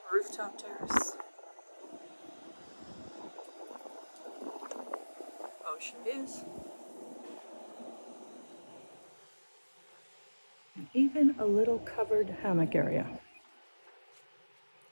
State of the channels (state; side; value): inverted; both; correlation -1.00